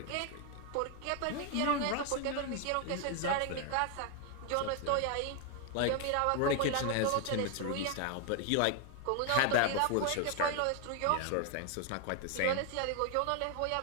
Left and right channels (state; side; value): different; both; correlation 0.00